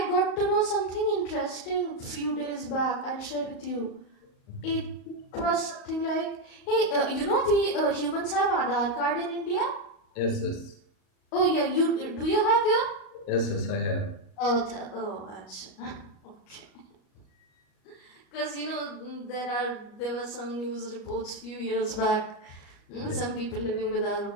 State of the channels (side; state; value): right; late; 38 ms